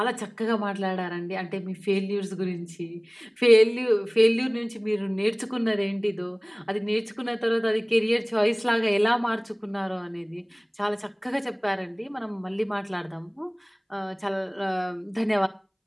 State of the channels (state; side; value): identical; both; correlation 1.00